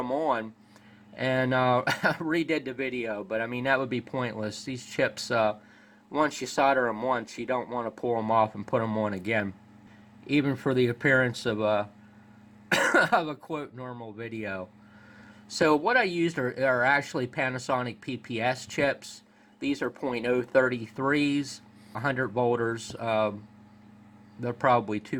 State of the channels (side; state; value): both; identical; correlation 1.00